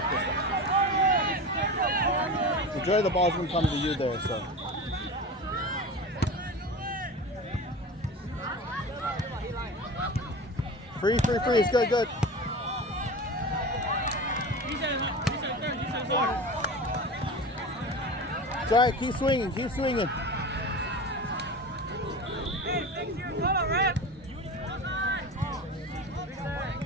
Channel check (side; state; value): both; normal; correlation 0.31